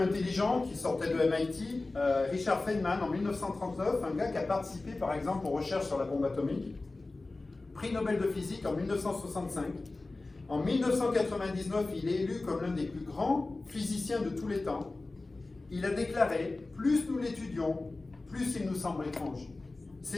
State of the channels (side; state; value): right; quieter; 3.3 dB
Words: intelligent qui sortait de MIT, Richard Feynman, en 1939, un gars qui a participé par exemple aux recherches sur la bombe atomique, prix Nobel de physique en 1965. En 1999, il est élu comme l'un des plus grands physiciens de tous les temps. Il a déclaré « Plus nous l'étudions, plus il nous semble étrange.